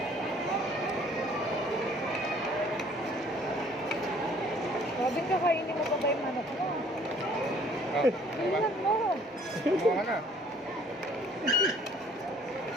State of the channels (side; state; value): both; normal; correlation 0.56